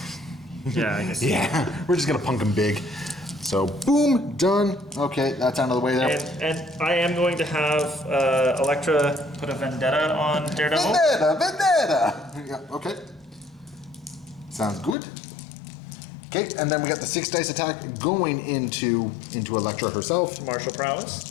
Yeah, I guess. Yeah, we're just going to punk them big. So, boom, done. Okay, that's out of the way there. And I am going to have Elektra put a vendetta on Daredevil. Vendetta! Yeah, okay. Sounds good. Okay, and then we got the 6 dice attack going into Elektra herself. Martial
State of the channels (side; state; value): right; drops out; at 15.0 s